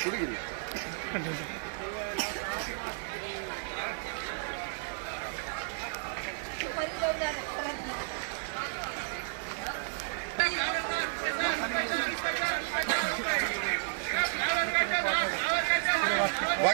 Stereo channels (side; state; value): left; silent; digital silence